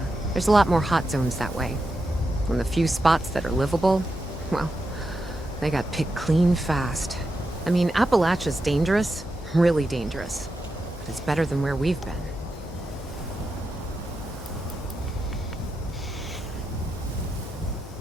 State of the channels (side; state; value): both; normal; correlation 0.87